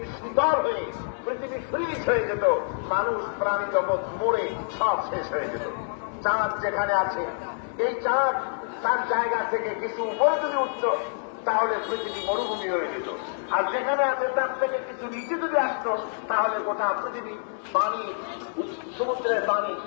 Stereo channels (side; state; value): right; silent; 60 dB below the other